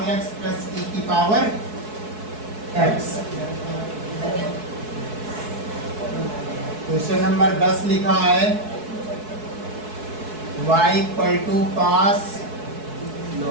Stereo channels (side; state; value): left; late; 4.6 ms